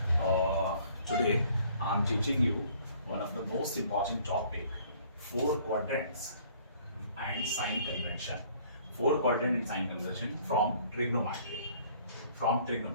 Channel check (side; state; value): both; inverted; correlation -0.57